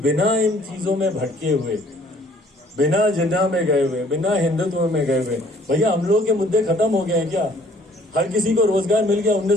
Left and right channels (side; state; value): both; normal; correlation 0.58